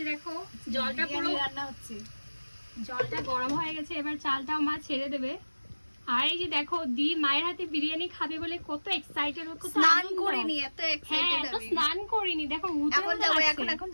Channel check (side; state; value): both; inverted; correlation -1.00